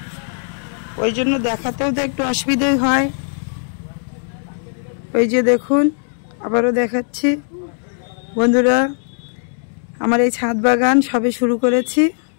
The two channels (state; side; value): silent; right; digital silence